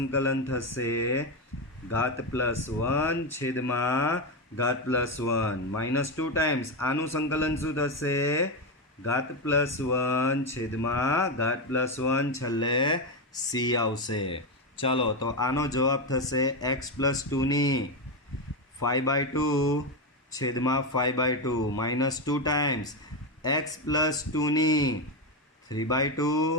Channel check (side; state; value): both; normal; correlation 0.10